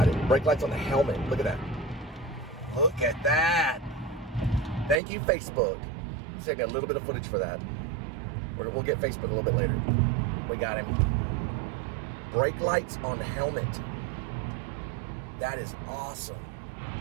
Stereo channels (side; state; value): left; drops out; at 5.0 s